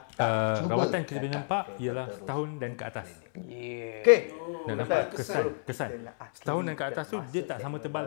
Rawatan kita boleh nampak ialah setahun dan ke atas. Okey. Dan nampak kesan. Setahun dan ke atas tu dia tak sama tebal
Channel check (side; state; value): right; silent; 57 dB below the other